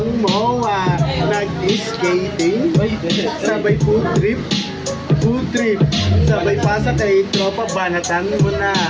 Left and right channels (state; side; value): identical; both; correlation 1.00